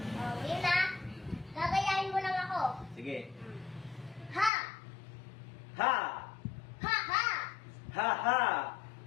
Oh, ngayon na. Gagayahin mo lang ako. Sige. Ha! Ha! Ha ha! Ha ha!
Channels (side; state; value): right; drops out; at 4.5 s